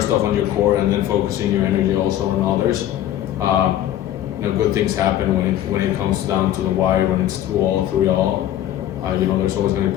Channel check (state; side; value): quieter; right; 12.3 dB